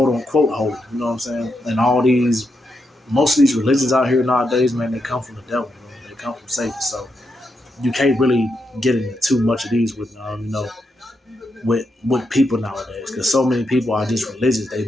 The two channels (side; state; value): both; normal; correlation 0.83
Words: unquote holy. You know what I'm saying? And most of these religions out here nowadays, man, they come from the devil. They come from Satan. So you can't really get into too much of these with, with people nowadays, because so many people are just religious. They're